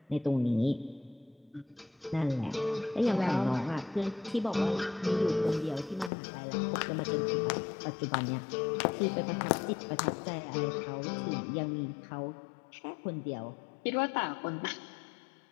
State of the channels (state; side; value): drops out; right; at 6.1 s